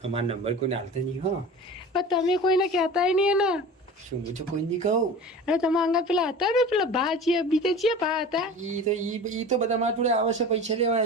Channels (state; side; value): normal; both; correlation 0.36